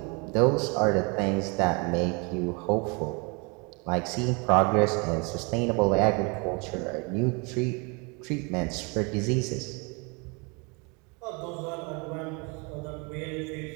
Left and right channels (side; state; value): left; quieter; 31.2 dB